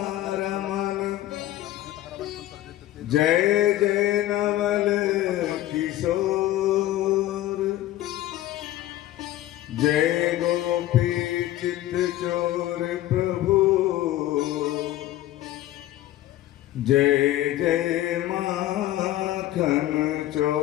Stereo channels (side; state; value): right; quieter; 14.5 dB